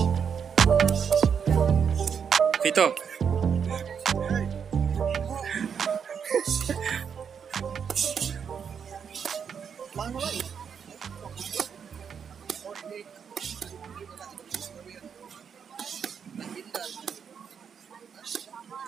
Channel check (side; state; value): left; quieter; 7.1 dB